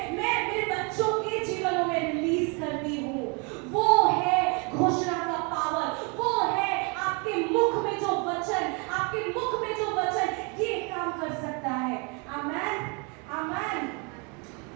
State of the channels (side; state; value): left; quieter; 32.7 dB